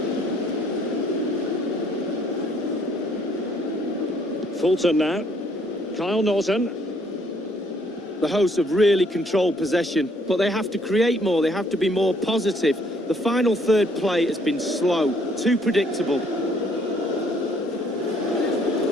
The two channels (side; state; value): both; normal; correlation 0.65